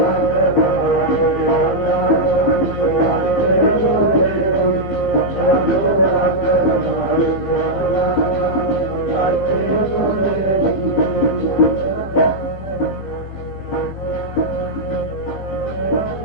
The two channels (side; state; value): right; late; 15 ms